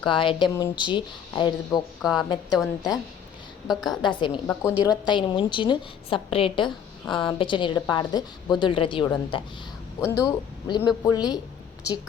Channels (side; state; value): right; quieter; 8.2 dB